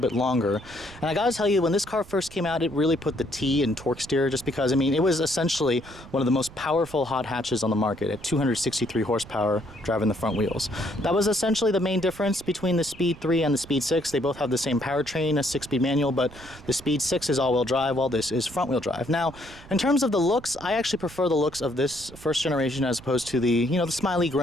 longer. And I gotta tell you, when this car first came out, it really put the T in torque steer, just because, I mean, it was essentially one of the most powerful hot hatches on the market at 263 horsepower driving the front wheels. That was essentially the main difference between the Speed 3 and the Speed 6. They both have the same powertrain, a 6-speed manual, but the Speed 6 is all-wheel drive, while this is front-wheel drive. Now, in terms of the looks, I actually prefer the looks of this first generation as opposed to the, the smiley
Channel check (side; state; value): right; noise; rumble, 18 dB below the sound